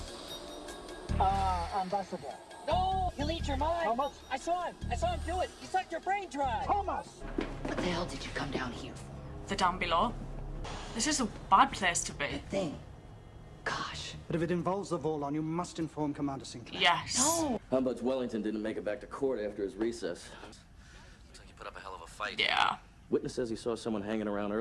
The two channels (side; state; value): both; identical; correlation 1.00